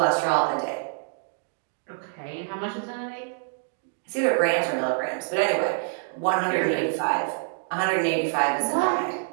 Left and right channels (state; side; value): silent; left; digital silence